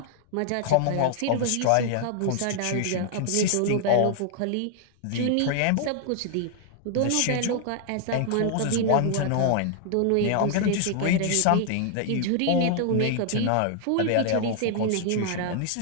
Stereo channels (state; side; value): different; both; correlation 0.00